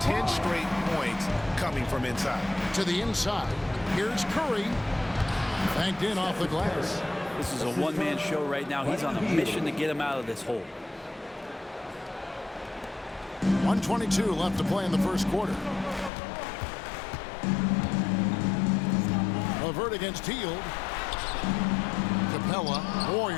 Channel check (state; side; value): drops out; right; at 16.1 s